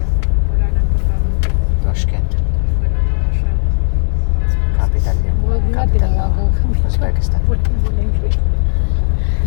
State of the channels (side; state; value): right; silent; digital silence